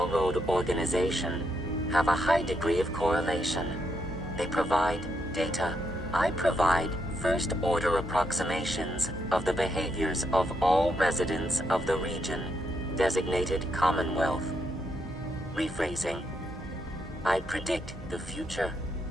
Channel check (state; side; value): normal; both; correlation 0.79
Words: organization have a high degree of correlation. They provide data. I provide first-order approximations of the behaviors of all residents of the region, designated Commonwealth. Rephrasing. I predict the future.